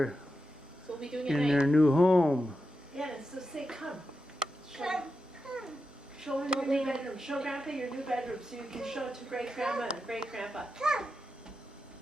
So we'll be doing it in at their night. new home. Yeah, so say come. Come. Show her your new bedroom. Show Grandpa your new bedroom so you can show it to great grandma and great grandpa. Come.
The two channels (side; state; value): both; normal; correlation 0.89